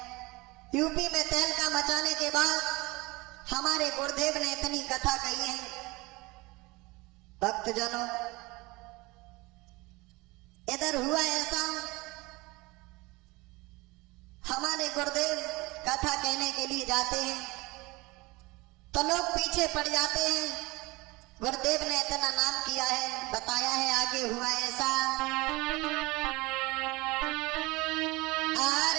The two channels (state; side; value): quieter; left; 23.0 dB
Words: यूपी में तहलका मचाने के बाद हमारे गुरुदेव ने इतनी कथा कही है। भक्तजनों, इधर हुआ ऐसा, हमारे गुरुदेव कथा कहने के लिए जाते हैं तो लोग पीछे पड़ जाते हैं। गुरुदेव ने इतना नाम किया है, बताया है आगे हुआ ऐसा,